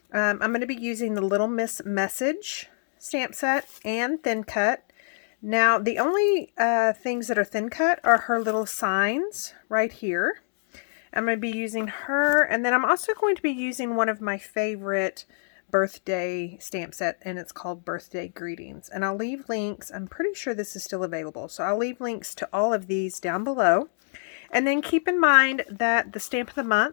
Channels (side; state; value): right; silent; digital silence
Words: I'm going to be using the Little Miss Message stamp set and Thin Cut. Now, the only things that are thin cut are her little signs right here. I'm going to be using her, and then I'm also going to be using one of my favorite birthday stamp set, and it's called Birthday Greetings. And I'll leave links. I'm pretty sure this is still available, so I'll leave links to all of these down below. And then keep in mind that the stamp of the